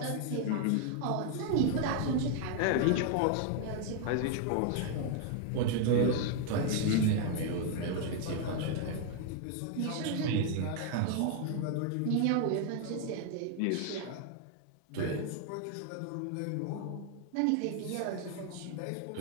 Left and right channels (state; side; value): different; both; correlation 0.00